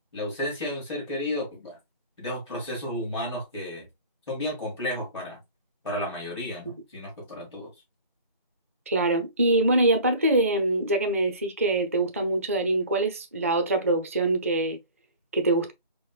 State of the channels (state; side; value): inverted; both; correlation -0.41